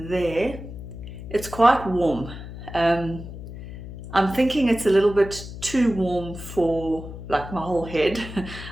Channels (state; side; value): noise; left; hum, 11 dB below the sound